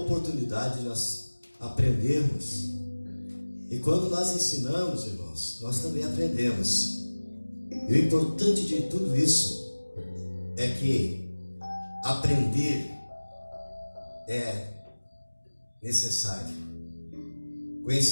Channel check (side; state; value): both; inverted; correlation -1.00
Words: de nós aprendermos. E quando nós ensinamos, irmãos, nós também aprendemos. E o importante de tudo isso é que aprender é necessário.